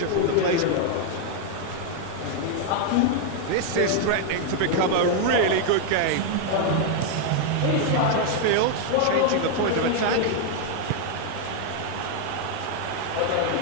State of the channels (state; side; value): different; both; correlation 0.00